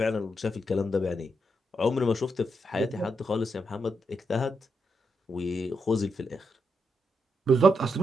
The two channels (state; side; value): normal; both; correlation 0.82